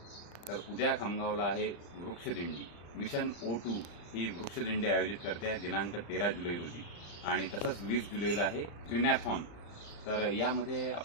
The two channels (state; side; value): late; right; 35 ms